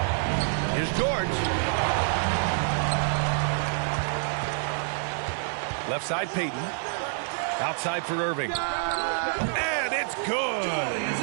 Here's George. Left side, Peyton. Outside for Irving. And it's good.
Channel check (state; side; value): silent; left; 60 dB below the other